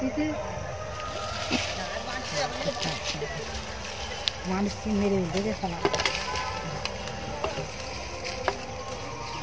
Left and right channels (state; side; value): identical; both; correlation 1.00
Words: মানুষ মেরে দেখে শোনা